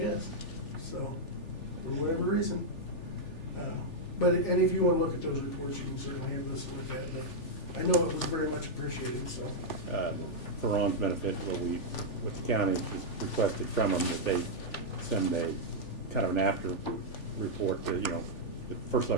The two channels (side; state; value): right; late; 3.4 ms